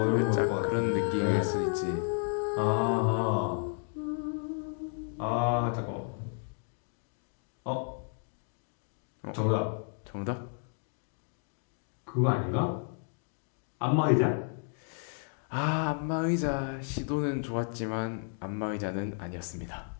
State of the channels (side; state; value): right; silent; 56 dB below the other